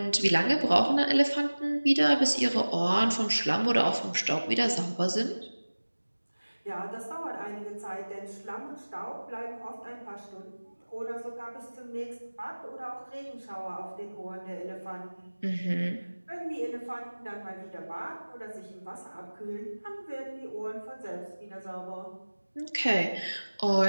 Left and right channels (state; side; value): inverted; both; correlation -1.00